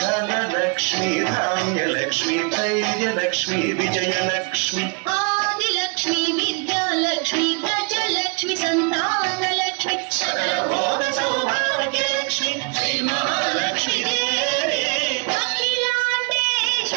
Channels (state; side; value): quieter; left; 35.0 dB